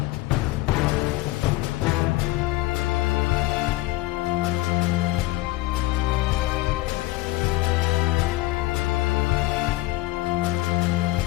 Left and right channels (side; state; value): right; quieter; 18.7 dB